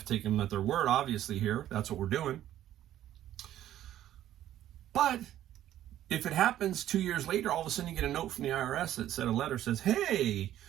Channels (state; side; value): quieter; left; 12.4 dB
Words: to take them at their word, obviously, here. That's what we're doing. But if it happens 2 years later, all of a sudden you get a note from the IRS that said, a letter says, hey,